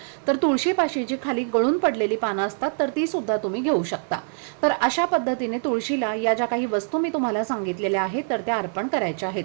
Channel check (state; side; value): silent; left; digital silence